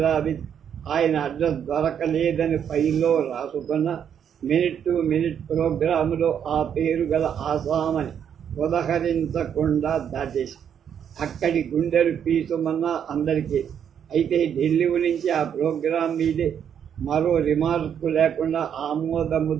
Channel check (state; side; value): quieter; left; 8.5 dB